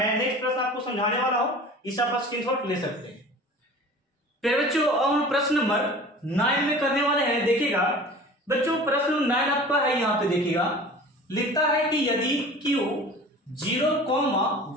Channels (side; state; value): both; normal; correlation 0.41